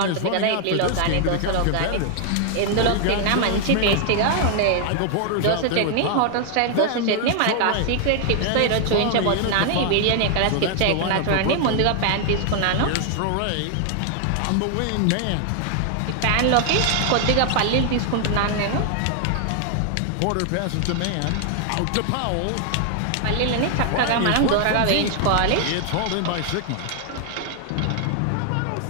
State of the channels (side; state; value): both; different; correlation 0.00